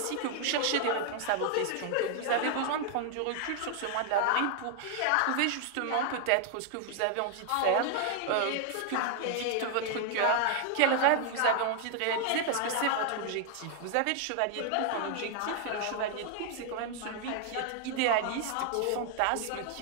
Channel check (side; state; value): both; different; correlation 0.00